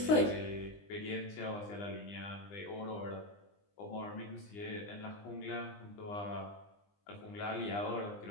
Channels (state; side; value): late; right; 20 ms